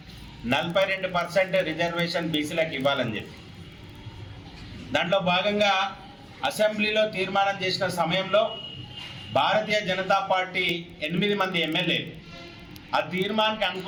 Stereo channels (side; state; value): both; identical; correlation 1.00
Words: 42% రిజర్వేషన్ బీసీలకు ఇవ్వాలని చెప్పి, దాంట్లో భాగంగా అసెంబ్లీలో తీర్మానం చేసిన సమయంలో భారతీయ జనతా పార్టీ 8 మంది ఎమ్మెల్యేలు ఆ తీర్మానానికి